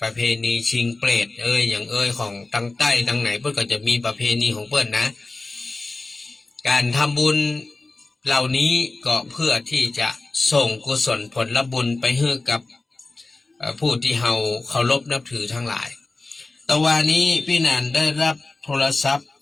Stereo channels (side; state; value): right; quieter; 3.4 dB